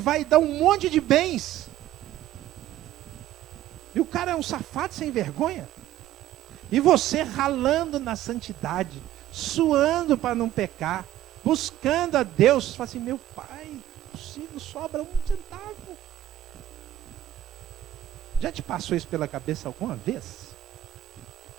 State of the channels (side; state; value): left; quieter; 13.4 dB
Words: dar um monte de bens. E o cara é um safado sem vergonha. E você ralando na santidade, suando para não pecar, buscando a Deus, fala assim, meu pai, possível, sobra 1 centavo. Já te passou isso pela cabeça alguma vez?